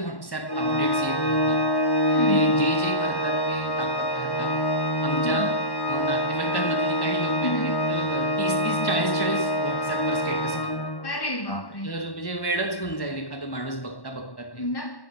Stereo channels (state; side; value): late; right; 1.1 ms